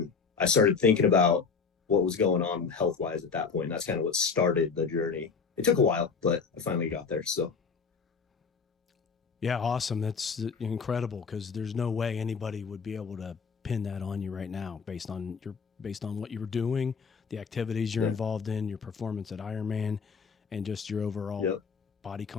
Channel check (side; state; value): right; quieter; 5.5 dB